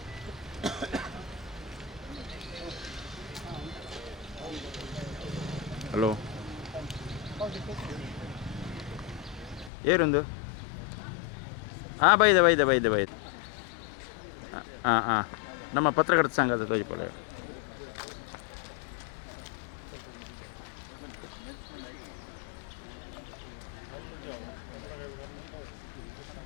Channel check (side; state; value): right; drops out; at 9.7 s